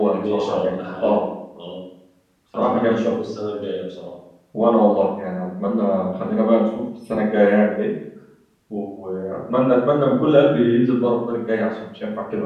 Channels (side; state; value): both; identical; correlation 1.00